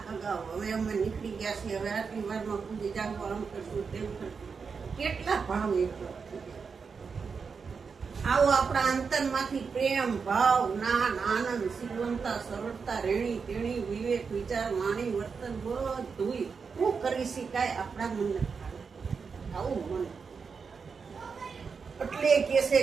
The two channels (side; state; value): left; quieter; 5.5 dB